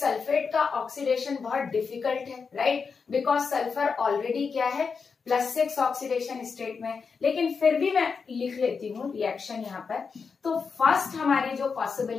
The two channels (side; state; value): right; quieter; 5.4 dB